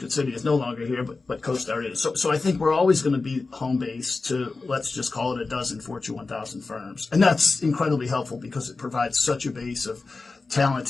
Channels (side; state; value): right; quieter; 3.9 dB